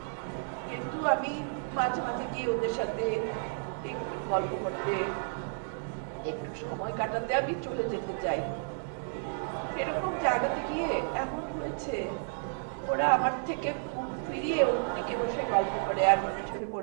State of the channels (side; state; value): left; silent; digital silence